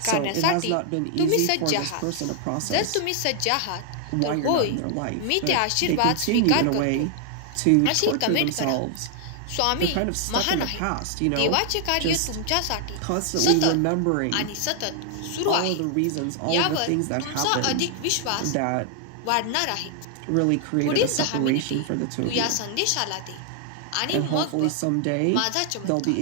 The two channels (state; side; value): different; both; correlation 0.00